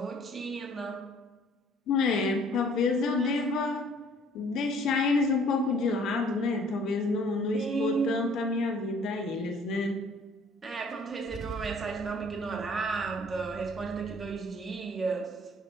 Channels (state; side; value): normal; both; correlation 0.56